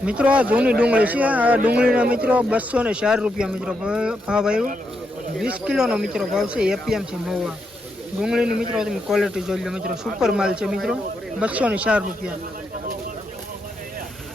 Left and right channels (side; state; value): both; normal; correlation 0.82